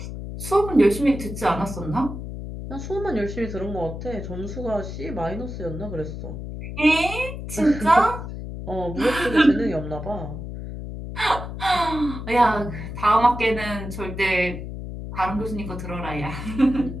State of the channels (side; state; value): left; noise; hum, 8 dB below the sound